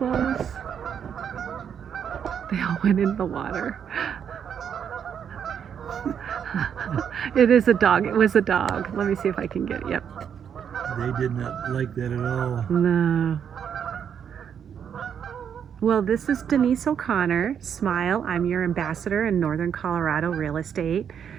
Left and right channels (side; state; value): left; quieter; 8.1 dB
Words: They all went in the water. It is a dog. It was a dog. Let me see if I can get it. Yep. They did not like that at all. No. Well, this is Denise O'Connor. Smile. I'm your ambassador in Northern Colorado real estate.